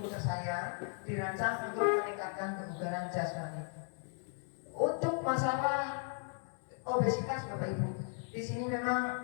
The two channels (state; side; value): silent; right; 54 dB below the other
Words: tersayang dirancang untuk meningkatkan kebugaran jasmani. Untuk masalah obesitas Bapak Ibu, di sini